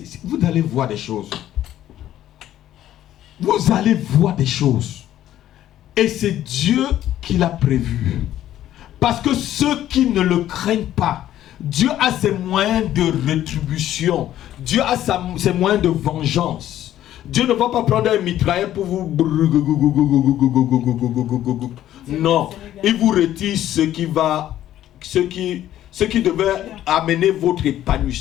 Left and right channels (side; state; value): right; quieter; 12.5 dB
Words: Vous allez voir des choses. Vous allez voir des choses. Et c'est Dieu qui l'a prévu. Parce que ceux qui ne le craignent pas, Dieu a ses moyens de rétribution. Dieu a ses moyens de vengeance. Dieu ne va pas prendre un mitrailleur pour vous... Non. Il vous retire ce qui devait amener votre